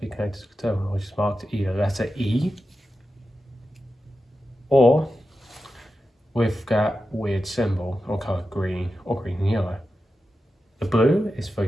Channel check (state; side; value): normal; both; correlation 0.91